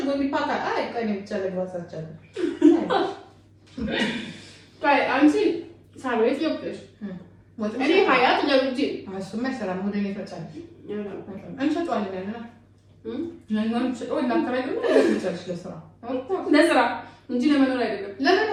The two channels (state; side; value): identical; both; correlation 1.00